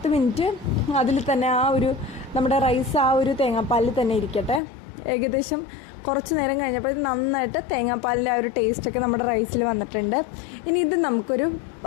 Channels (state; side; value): drops out; right; at 4.6 s